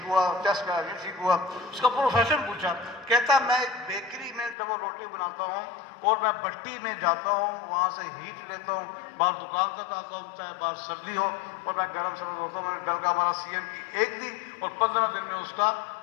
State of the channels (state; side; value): drops out; right; at 4.5 s